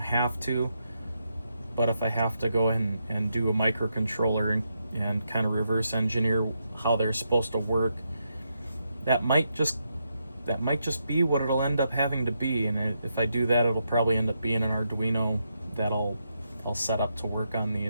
to, but if I have to go and do a microcontroller and kind of reverse engineer how they're supposed to work, that might just be what it'll end up having to be. And if I do that, it'll probably end up being an Arduino that I'll set up to work on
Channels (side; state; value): both; inverted; correlation -0.82